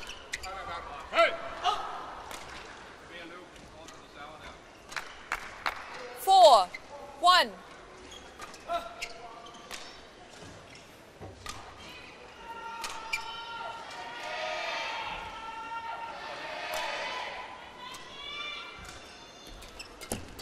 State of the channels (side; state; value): both; identical; correlation 1.00